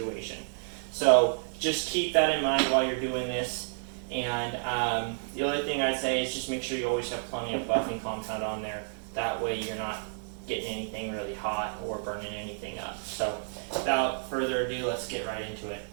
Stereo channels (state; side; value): silent; left; digital silence